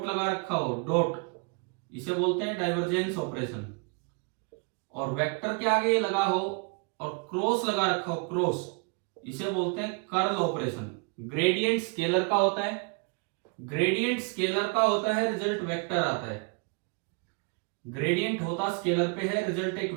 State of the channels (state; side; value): quieter; left; 33.7 dB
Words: लगा रखा हो, डॉट, इसे बोलते हैं डाइवर्जेंस ऑपरेशन। और वेक्टर के आगे ये लगा हो और क्रॉस लगा रखा हो, क्रॉस, इसे बोलते हैं कर्ल ऑपरेशन। ग्रेडियंट स्केलर का होता है, ग्रेडियंट स्केलर का होता है, रिजल्ट वेक्टर आता है। ग्रेडियंट होता स्केलर पे है, रिजल्ट एक